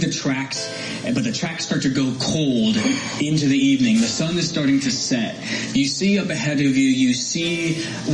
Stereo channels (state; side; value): identical; both; correlation 1.00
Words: the tracks, but the tracks start to go cold into the evening. The sun is starting to set. You see up ahead of you, you see